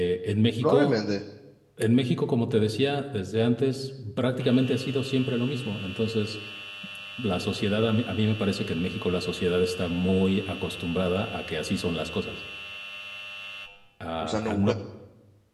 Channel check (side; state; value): both; identical; correlation 1.00